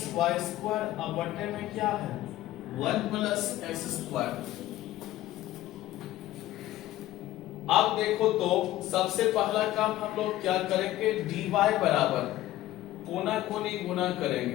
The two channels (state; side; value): quieter; right; 15.2 dB